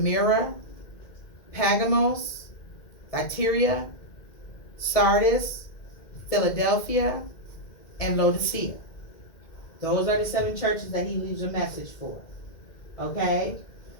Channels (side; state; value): right; late; 2.1 ms